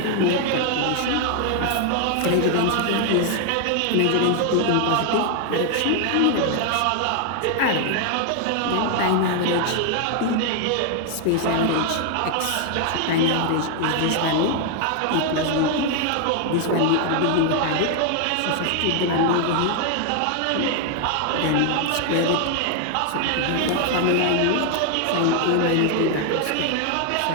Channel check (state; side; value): different; both; correlation 0.00